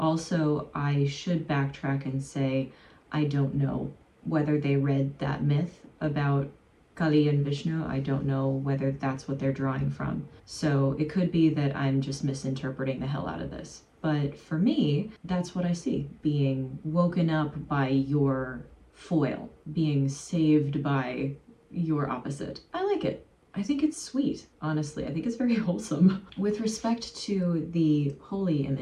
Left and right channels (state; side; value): identical; both; correlation 1.00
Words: I should backtrack and say I don't know whether they read that myth about Kali and Vishnu. I don't know whether that's what they're drawing from. So it could be that I'm just misinterpreting the hell out of this. But for me, that's what I see. Being woken up by your foil, being saved by your opposite. I like it. I think it's sweet, honestly. I think it's very wholesome. With respect to the holy